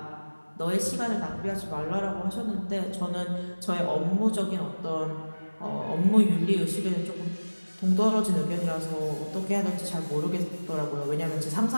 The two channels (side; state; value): both; inverted; correlation -1.00